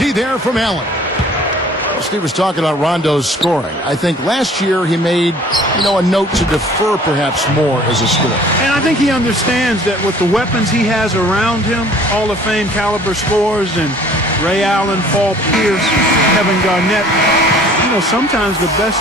there from Allen. Steve was talking about Rondo's scoring. I think last year he made, a note to defer perhaps more as a scorer. And I think he understands that with the weapons he has around him, Hall of Fame caliber scorers and Ray Allen, Paul Pierce, Kevin Garnett, sometimes the best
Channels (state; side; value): normal; both; correlation 0.52